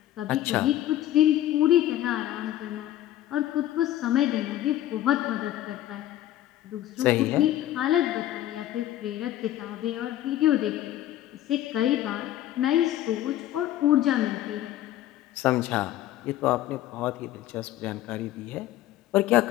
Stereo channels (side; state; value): right; quieter; 13.3 dB